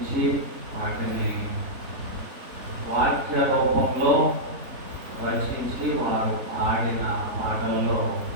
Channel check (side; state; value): left; late; 3.7 ms